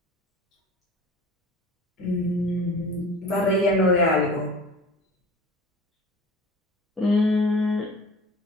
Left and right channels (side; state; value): both; normal; correlation 0.41